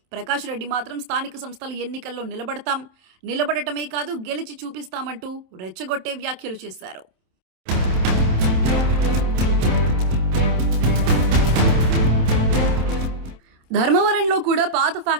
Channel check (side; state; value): left; late; 27 ms